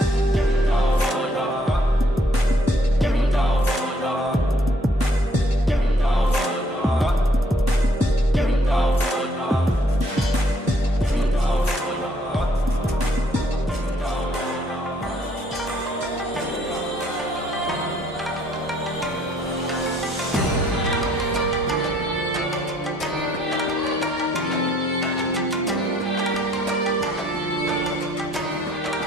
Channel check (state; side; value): normal; both; correlation 0.66